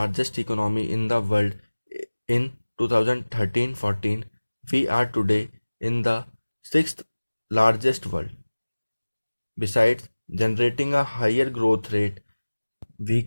economy in the world in 2013-14, we are today in the 6th largest world. Besides generating a higher growth rate, we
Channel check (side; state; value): both; inverted; correlation -1.00